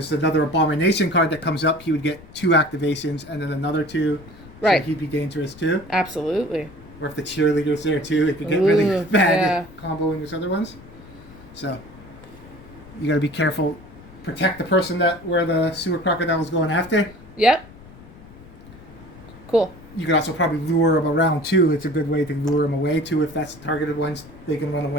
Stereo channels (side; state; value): left; noise; rumble, 20 dB below the sound